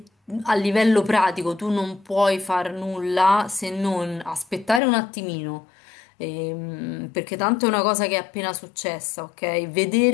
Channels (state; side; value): drops out; right; at 4.8 s